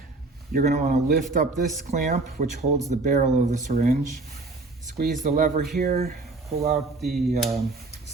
You're going to want to lift up this clamp, which holds the barrel of the syringe. Squeeze the lever here, pull out the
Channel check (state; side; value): quieter; left; 3.4 dB